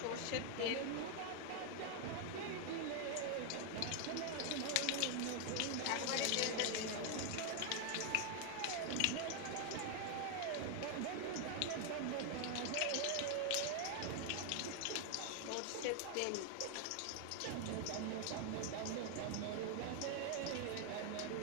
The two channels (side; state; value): both; different; correlation 0.00